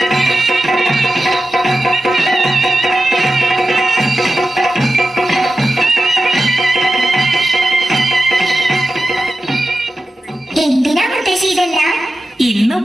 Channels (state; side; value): normal; both; correlation 0.92